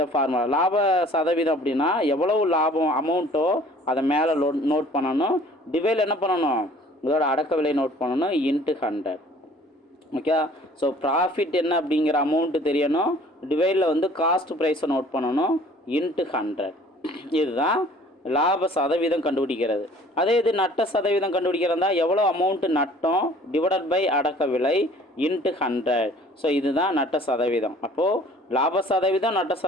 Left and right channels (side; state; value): both; normal; correlation 0.52